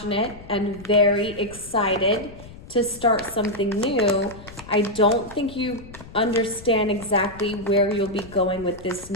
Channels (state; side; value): noise; left; rumble, 17 dB below the sound